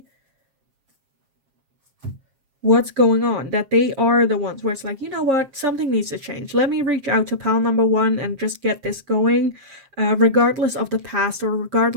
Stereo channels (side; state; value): left; late; 7.5 ms